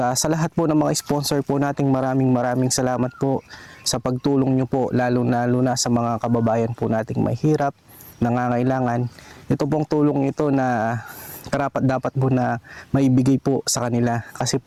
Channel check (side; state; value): both; identical; correlation 1.00